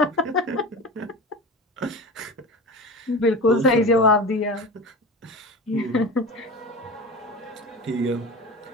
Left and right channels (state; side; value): normal; both; correlation 0.31